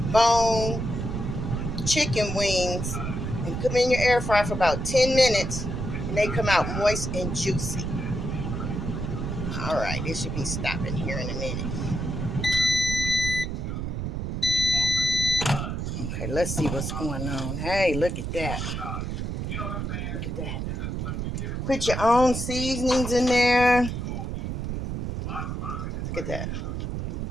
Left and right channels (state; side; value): noise; right; rumble, 3 dB below the sound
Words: bone chicken wings and put them in your air fryer for about 10 minutes, and they come out moist and juicy. All right, it should be stopping here in a minute. Okay, let's see what's going on. Hey, look at that. Look at that. Put your own seasonings in there. Look at that.